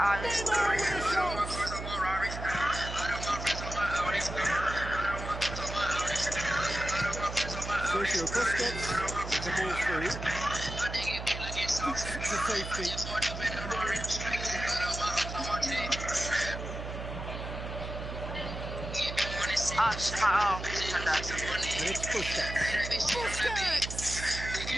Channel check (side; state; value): right; noise; hum, 7 dB below the sound